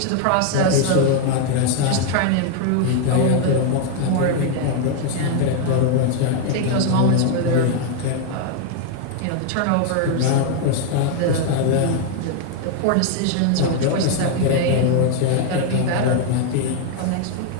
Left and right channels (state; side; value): different; both; correlation 0.00